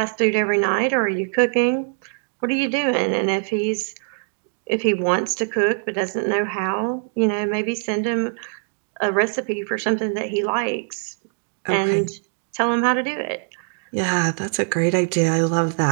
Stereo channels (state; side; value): silent; left; digital silence